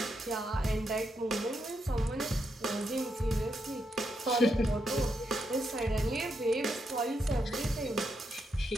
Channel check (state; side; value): normal; both; correlation 0.82